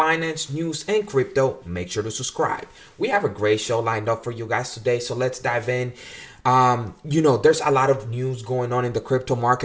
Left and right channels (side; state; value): both; identical; correlation 1.00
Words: news, and crypto, make sure to subscribe. We have a great show lined up for you guys today, so let's dive in. There's a lot of news going on in the crypto